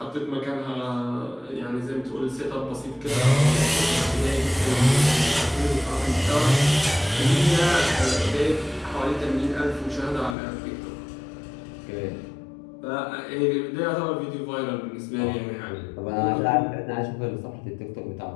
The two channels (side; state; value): right; drops out; at 10.4 s